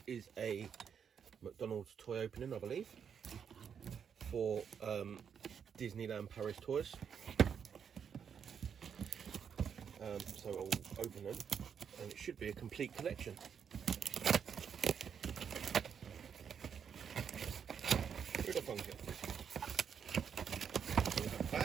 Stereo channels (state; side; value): quieter; left; 7.4 dB